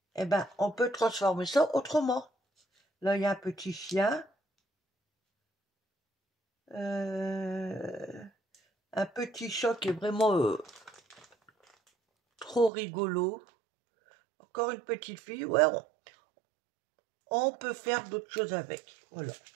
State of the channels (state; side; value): drops out; left; at 12.7 s